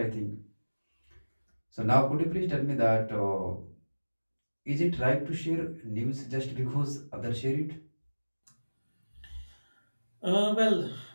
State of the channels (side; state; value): both; inverted; correlation -1.00